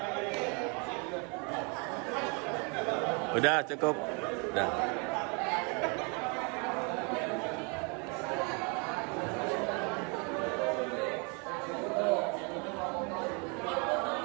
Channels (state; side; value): quieter; left; 33.7 dB